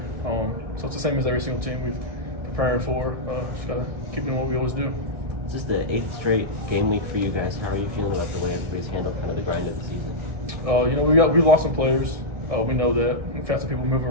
So it's the same as every single team we've preparing for. Just got to keep doing what we always do. This is the 8th straight game week for you guys. How are you feeling about the way everybody's handled kind of the grind of the season? We lost some players. We know that. We've had some people move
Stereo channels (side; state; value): left; late; 1.6 ms